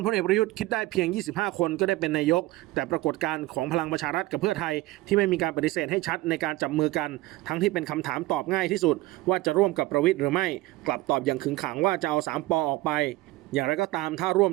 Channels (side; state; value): left; quieter; 18.5 dB